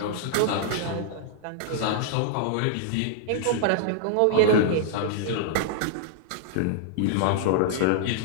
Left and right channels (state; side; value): different; both; correlation -0.01